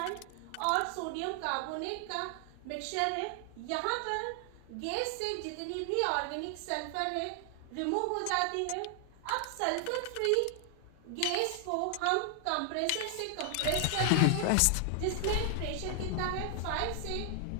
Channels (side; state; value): both; different; correlation 0.00